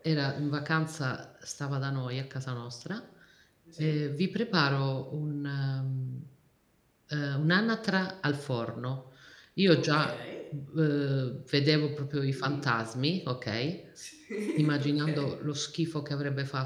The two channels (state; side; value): identical; both; correlation 1.00